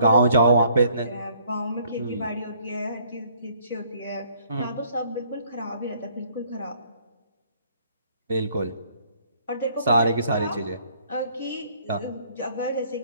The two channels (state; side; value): inverted; both; correlation -0.62